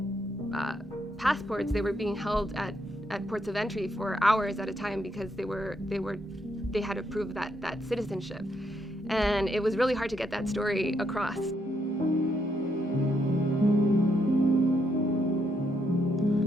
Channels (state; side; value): normal; both; correlation 0.76